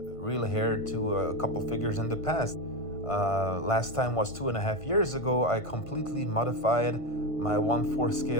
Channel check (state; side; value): late; right; 1.5 ms